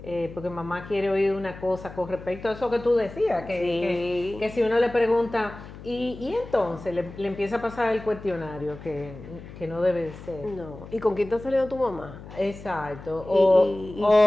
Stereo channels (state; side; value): noise; left; hum, 15 dB below the sound